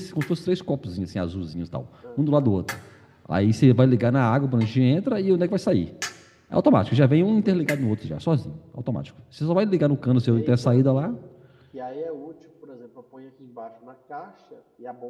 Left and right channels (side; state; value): both; identical; correlation 1.00